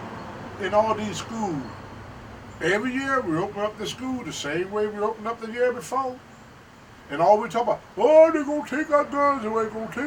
in all these schools. Every year we open up the school the same way we opened up the year before. And all we talk about, oh, they're going to take our guns away,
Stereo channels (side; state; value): both; identical; correlation 1.00